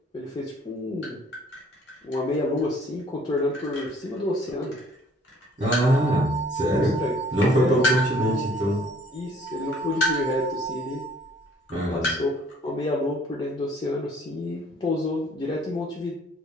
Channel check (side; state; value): both; normal; correlation 0.58